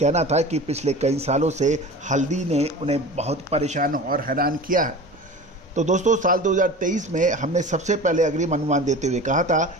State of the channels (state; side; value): normal; both; correlation 0.36